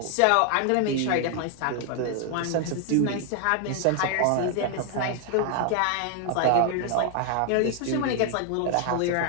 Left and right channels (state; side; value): different; both; correlation 0.00